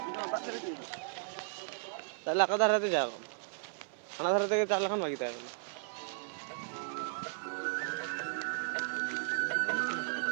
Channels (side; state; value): left; silent; 54 dB below the other